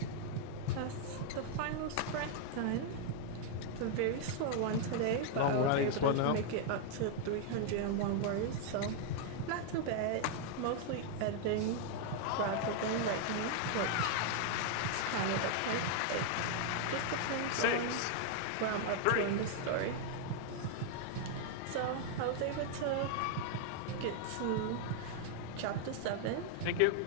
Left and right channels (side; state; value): both; different; correlation 0.00